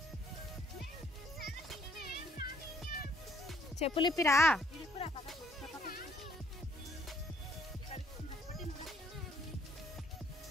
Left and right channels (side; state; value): both; normal; correlation 0.63